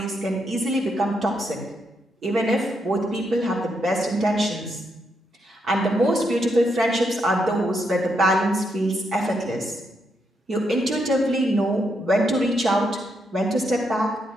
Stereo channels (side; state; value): both; normal; correlation 0.79